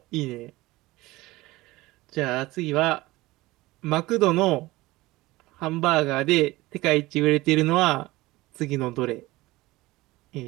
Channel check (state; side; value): quieter; left; 19.6 dB